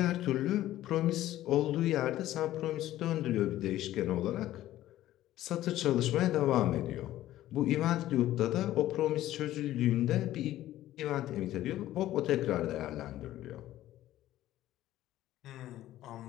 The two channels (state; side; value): quieter; right; 14.2 dB